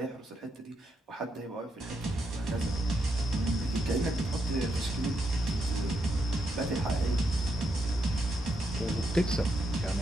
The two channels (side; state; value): both; normal; correlation 0.81